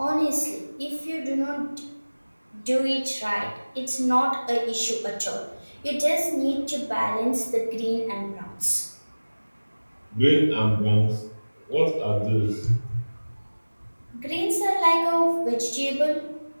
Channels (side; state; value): both; inverted; correlation -1.00